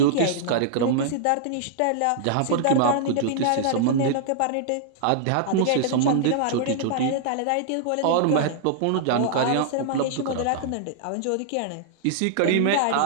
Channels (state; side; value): different; both; correlation -0.01